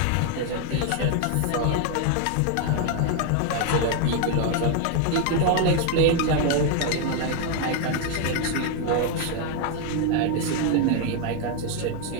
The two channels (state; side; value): different; both; correlation 0.00